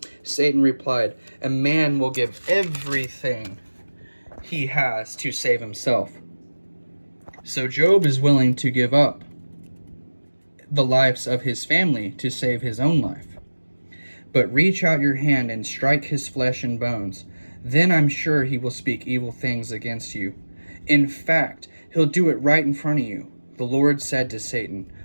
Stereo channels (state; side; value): inverted; both; correlation -1.00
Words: Satan replied, a man will give everything he has to save himself. So Job is willing to give up the lives of his family to save his own life. But reach out your hand and strike his flesh and bones. Then I'm sure he will speak evil things against you. In fact, he'll do it right in front of you. The Lord said to Satan,